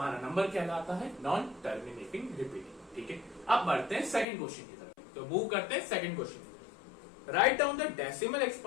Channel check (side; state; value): right; drops out; at 4.2 s